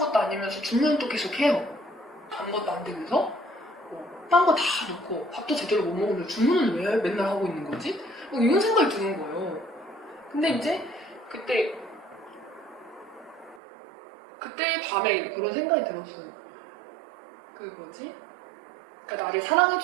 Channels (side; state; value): left; drops out; at 13.6 s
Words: 아니면서 주문은 또 계속 해요. 아무것도 안 되면서 딴 거 다 넣고 밥도 제대로 못 먹으면서 주문은 왜 맨날 하고 있는 거지? 이런 생각이 드는 거예요. 근데 이제 그때 밤에 그런 생각이 들었어요. 그러니까 나를